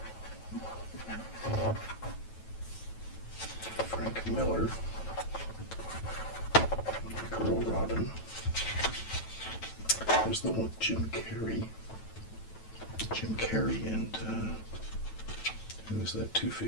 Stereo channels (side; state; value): right; late; 9.1 ms